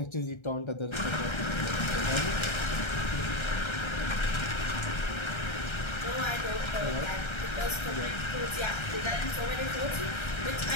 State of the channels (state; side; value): late; right; 1.3 ms